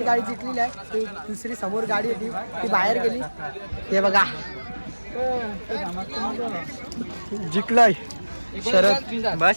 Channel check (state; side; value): inverted; both; correlation -1.00